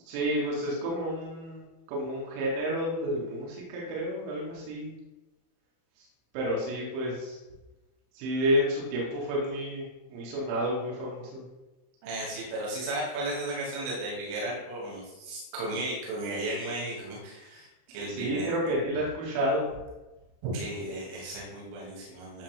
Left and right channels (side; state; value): left; late; 30 ms